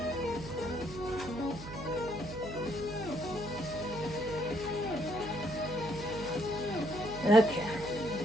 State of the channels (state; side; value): noise; right; hum, 11 dB below the sound